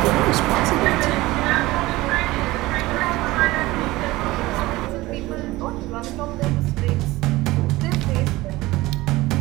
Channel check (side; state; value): left; quieter; 19.2 dB